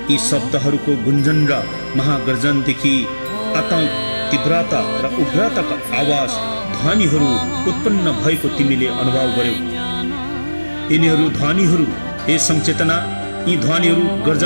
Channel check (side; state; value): both; inverted; correlation -1.00